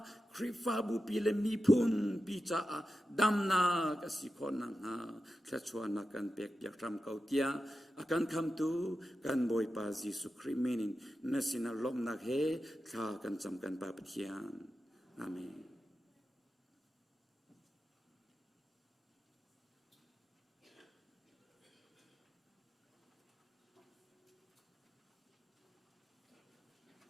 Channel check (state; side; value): normal; both; correlation 0.92